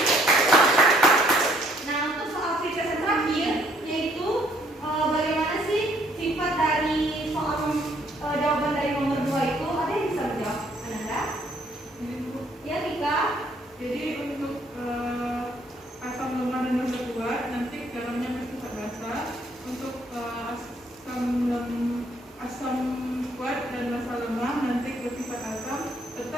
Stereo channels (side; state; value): both; normal; correlation 0.65